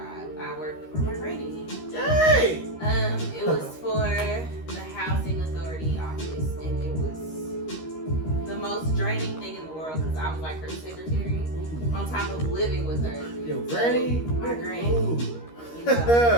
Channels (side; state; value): right; late; 13 ms